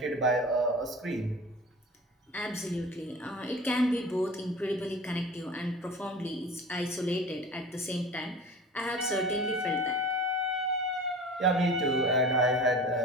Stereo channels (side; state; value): both; normal; correlation 0.38